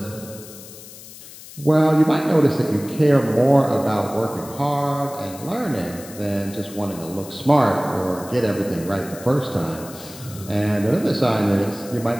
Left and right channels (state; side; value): noise; left; hiss, 17 dB below the sound